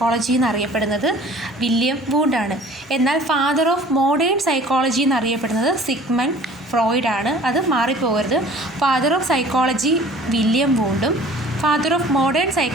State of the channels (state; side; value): normal; both; correlation 0.48